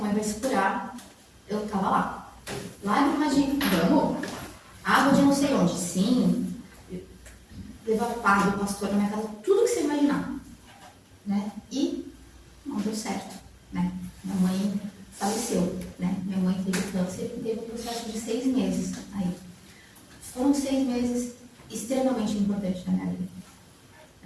vai se curar, eu estava lá. Lágrimas de vamos, água de não sei onde, sim, levar padre, pastor na minha casa, tudo que você imaginar. Né? E não deu certo. Né? Minha mãe faleceu. Né? Minha mãe teve câncer e teve um processo de 6 meses. Aí. Foram 6 meses extremamente importantes na minha vida.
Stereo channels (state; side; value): identical; both; correlation 1.00